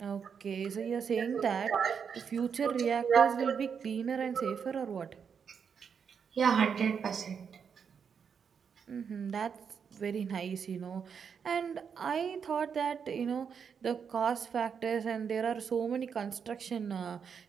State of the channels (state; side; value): quieter; left; 6.8 dB